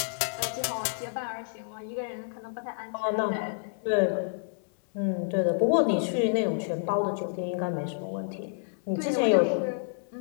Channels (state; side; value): silent; right; 59 dB below the other